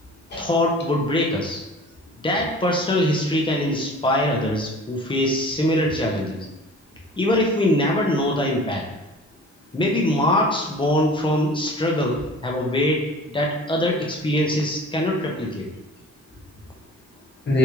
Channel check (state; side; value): normal; both; correlation 0.44